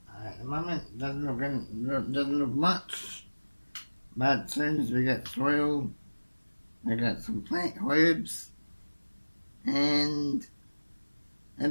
At the moment, doesn't look much, but as soon as we get soil, we got some plant herbs, and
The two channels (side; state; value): both; inverted; correlation -1.00